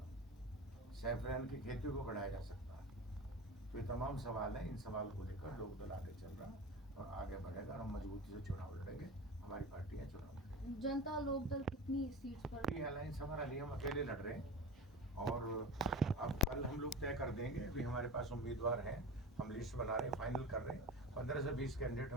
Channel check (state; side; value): normal; both; correlation 0.31